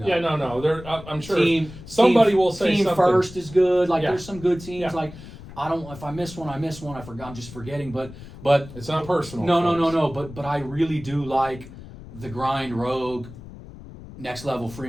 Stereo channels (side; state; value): left; noise; rumble, 16 dB below the sound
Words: Yeah, no. I'm sure somebody will say Team something. First is good. Like there's some good teams. Like if I miss one, I miss one. I'm just forgetting. But it's not personal. No. But I really do like the Grind, Rogue, Next Level,